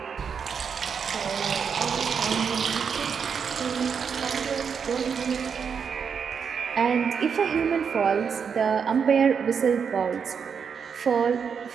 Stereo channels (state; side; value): quieter; left; 6.6 dB